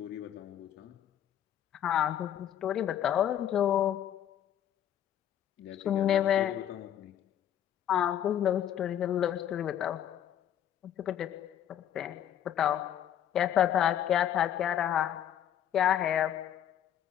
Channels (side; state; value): right; quieter; 10.5 dB